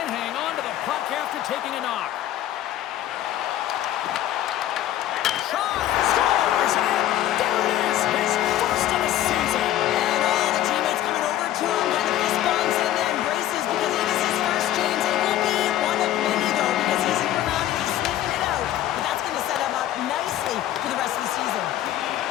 hang on to the puck after taking a knock. Shot! Scores! And there it is! His first of the season! And all the teammates coming over to him, kind of fist bumps and then embraces because it is his first, James. It will be one of many, though, because he's sitting around and he's sniffing it out. But that's going to set him up nicely for the rest of the season.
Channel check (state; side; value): quieter; right; 12.9 dB